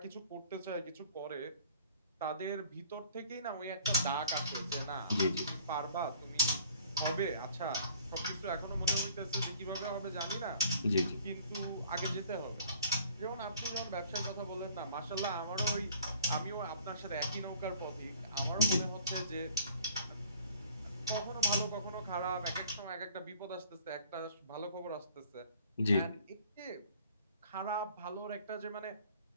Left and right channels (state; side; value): inverted; both; correlation -0.53